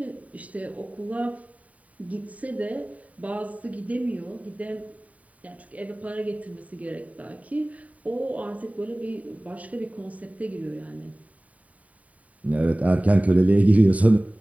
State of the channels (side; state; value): left; late; 0.069 ms